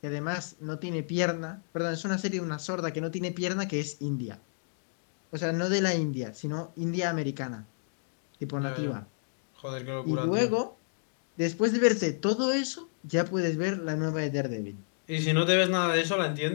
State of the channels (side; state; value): right; silent; digital silence